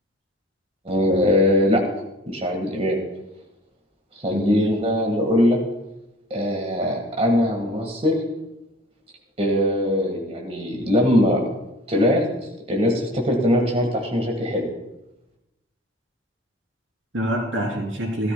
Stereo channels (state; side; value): normal; both; correlation 0.46